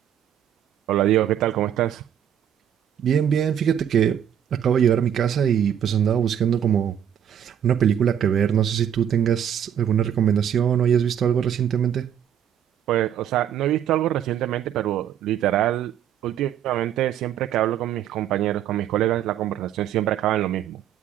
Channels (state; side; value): quieter; left; 9.7 dB